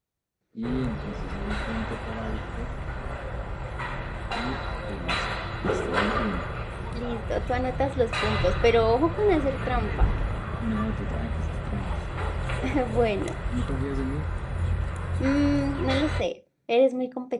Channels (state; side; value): identical; both; correlation 1.00